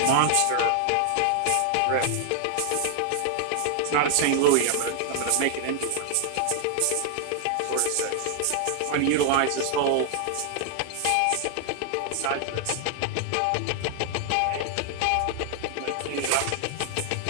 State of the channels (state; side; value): different; both; correlation 0.00